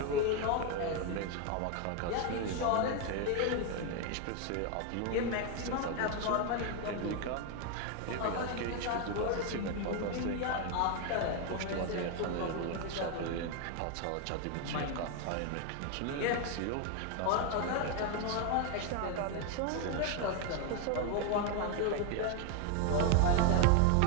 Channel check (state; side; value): different; both; correlation 0.01